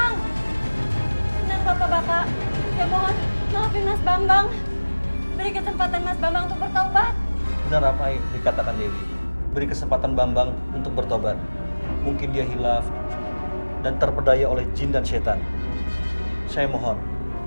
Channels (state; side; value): inverted; both; correlation -1.00